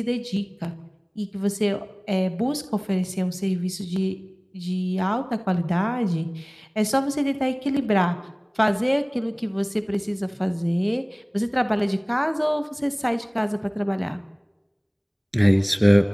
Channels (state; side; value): identical; both; correlation 1.00